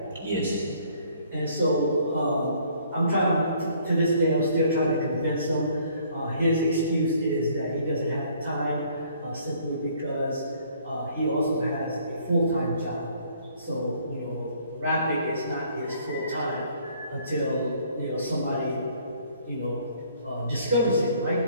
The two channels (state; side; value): inverted; both; correlation -0.60